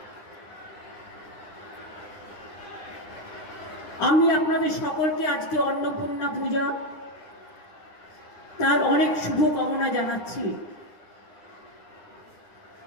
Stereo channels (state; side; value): late; right; 9.8 ms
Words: আমি আপনাদের সকলকে আজকে অন্নপূর্ণা পূজা তার অনেক শুভকামনা জানাচ্ছি।